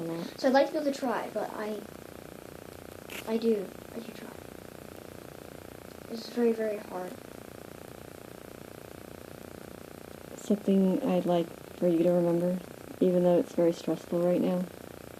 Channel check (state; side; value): identical; both; correlation 1.00